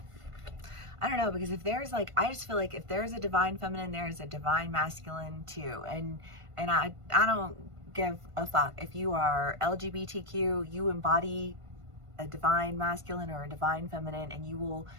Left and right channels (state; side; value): late; left; 1.5 ms